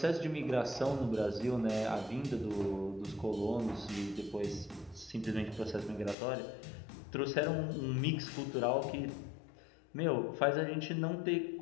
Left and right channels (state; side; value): drops out; right; at 6.2 s